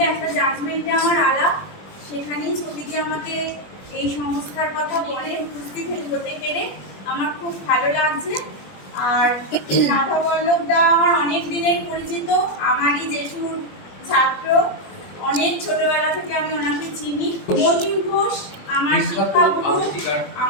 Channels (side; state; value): right; late; 21 ms